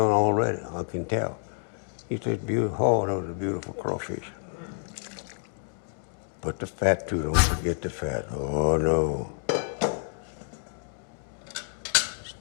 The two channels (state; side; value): silent; right; 59 dB below the other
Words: already, I can tell. It's just beautiful. Oh, that was a beautiful crawfish. Put the fat too, don't forget the fat. Oh no.